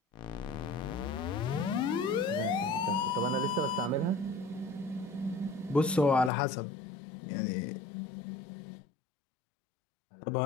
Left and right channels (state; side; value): drops out; right; at 6.3 s